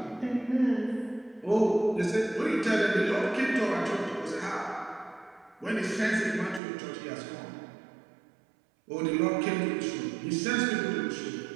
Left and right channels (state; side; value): drops out; left; at 6.6 s